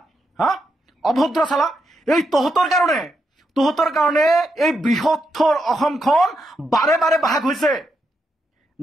হা অভদ্ৰ চালা। এই তহঁতৰ কাৰণে এই বৃহত্তৰ অসমখন বাৰে বাৰে ভাগ হৈছে।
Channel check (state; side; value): normal; both; correlation 0.82